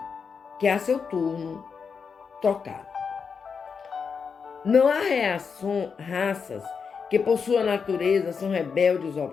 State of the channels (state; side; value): quieter; right; 5.9 dB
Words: que a seu turno trocaram. Não há raças que por sua natureza são rebeldes ao